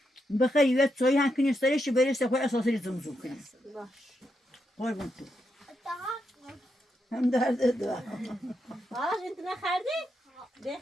بخیر یه چای هم کنی سرش برسه خود اساسی زمزم کنی قربون تو Daha هم درد دو آرش انت نخردی؟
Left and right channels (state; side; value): normal; both; correlation 0.82